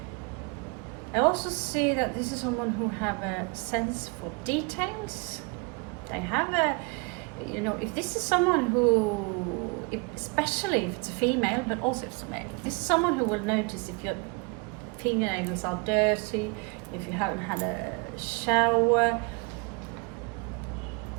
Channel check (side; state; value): left; quieter; 30.6 dB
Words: I also see that this is someone who have a sense for details. They have a, if this is someone who, especially if it's a female, but also if it's a male, this is someone who will notice if your fingernails are dirty, if you haven't had a shower.